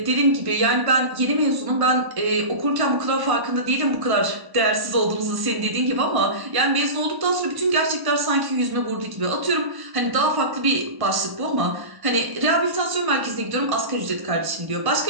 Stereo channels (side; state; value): left; late; 1.0 ms